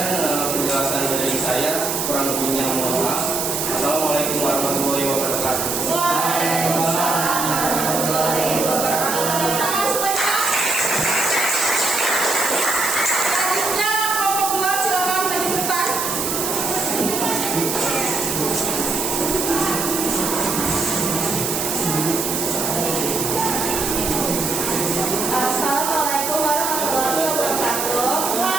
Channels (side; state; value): right; noise; hiss, 2 dB below the sound